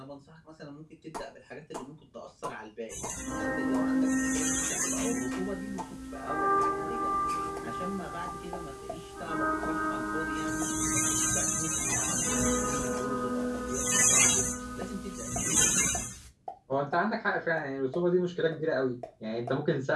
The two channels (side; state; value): both; identical; correlation 1.00